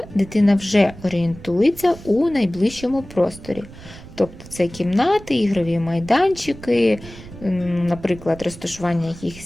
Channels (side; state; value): right; noise; rumble, 17 dB below the sound